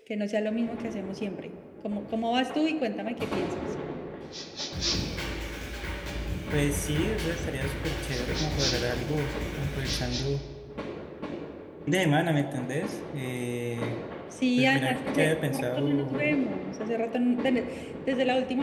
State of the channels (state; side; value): identical; both; correlation 1.00